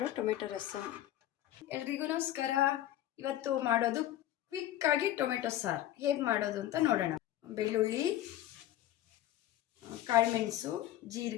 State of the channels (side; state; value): right; quieter; 13.4 dB